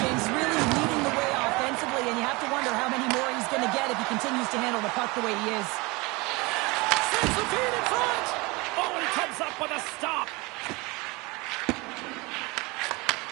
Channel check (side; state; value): left; quieter; 25.1 dB